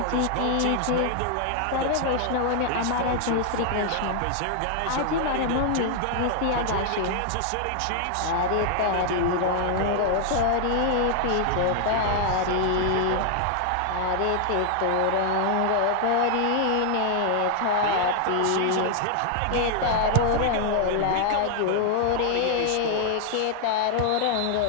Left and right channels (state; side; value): different; both; correlation 0.00